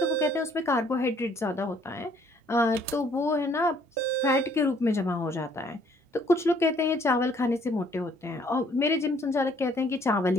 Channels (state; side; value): normal; both; correlation 0.62